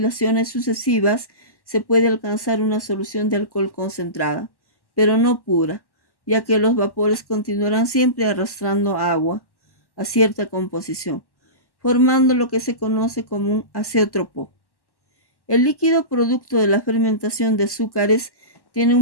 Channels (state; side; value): late; right; 1.1 ms